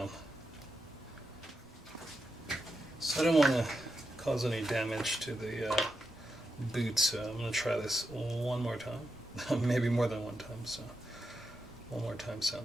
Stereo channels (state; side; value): normal; both; correlation 0.87